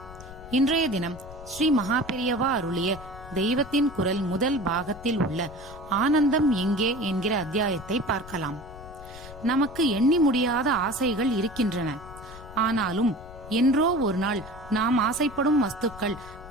இன்றைய தினம் ஸ்ரீ மகாபெரியவா அருளிய தெய்வத்தின் குரல் முதல் பாகத்தில் உள்ள ஆனந்தம் எங்கே என்கிற அத்தியாயத்தை பார்க்கலாம். நமக்கு எண்ணி முடியாத ஆசைகள் இருக்கின்றன. ஆனாலும் என்றோ ஒரு நாள் நாம் ஆசைப்படும் வஸ்துக்கள்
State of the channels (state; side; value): noise; left; rumble, 16 dB below the sound